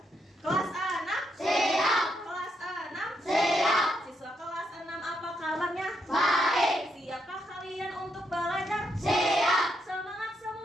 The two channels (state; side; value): normal; both; correlation 0.79